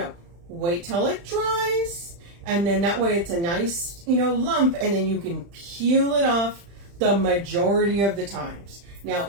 Wait till it dries, and then that way it's a nice, you know, lump, and then you can peel it off the majority of the times. Now,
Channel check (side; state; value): left; late; 35 ms